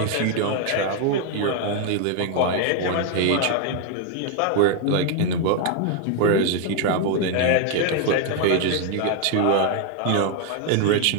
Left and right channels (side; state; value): both; different; correlation 0.00